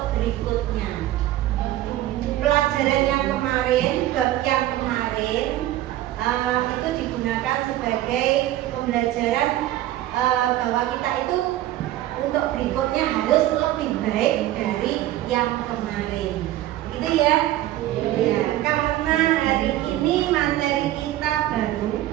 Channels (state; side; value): quieter; left; 14.4 dB